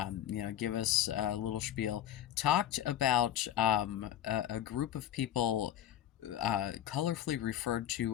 Give us a little spiel. Talked about a group of people colorfully referred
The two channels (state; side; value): quieter; right; 11.4 dB